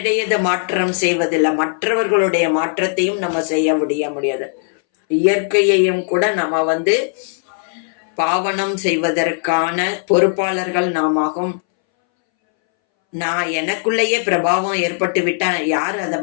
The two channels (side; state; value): right; silent; 64 dB below the other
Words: மாற்றம் செய்வதில்லை, மற்றவர்களுடைய மாற்றத்தையும் நம்ம செய்ய முடியாது. இயற்கையையும் கூட நம்ம பாவனம் செய்வதற்கான பொறுப்பாளர்கள் நாமாகும். நான் எனக்குள்ளேயே பிரபாவம் ஏற்பட்டு விட்டா யார் அதை